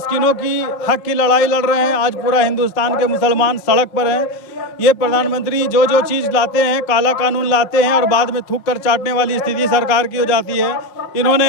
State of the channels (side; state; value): right; late; 5.4 ms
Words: की हक की लड़ाई लड़ रहे हैं। आज पूरा हिंदुस्तान के मुसलमान सड़क पर हैं। ये प्रधानमंत्री जो जो चीज़ लाते हैं, काला कानून लाते हैं और बाद में थूक कर चाटने वाली स्थिति सरकार की हो जाती है।